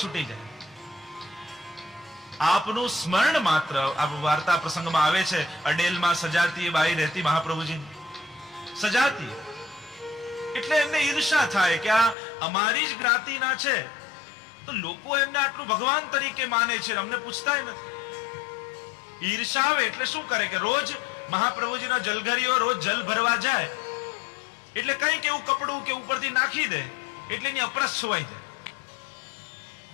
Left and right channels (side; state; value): right; drops out; at 12.2 s